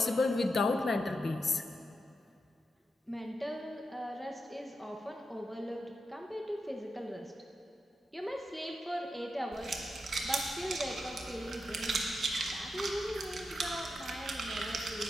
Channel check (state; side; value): normal; both; correlation 0.87